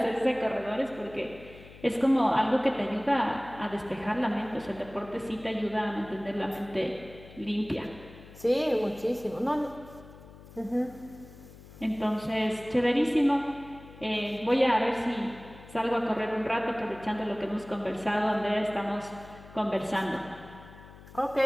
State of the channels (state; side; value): noise; left; hum, 19 dB below the sound